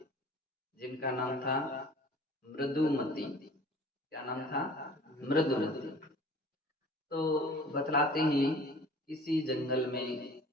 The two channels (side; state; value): both; normal; correlation 0.47